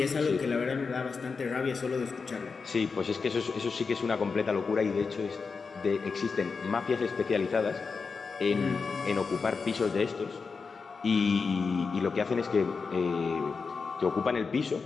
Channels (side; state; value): right; quieter; 4.9 dB